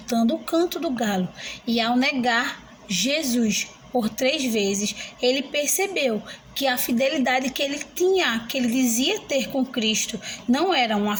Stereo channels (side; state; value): both; identical; correlation 1.00